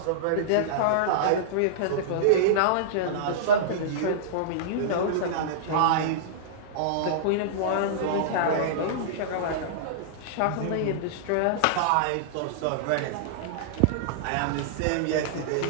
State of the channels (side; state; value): both; different; correlation -0.02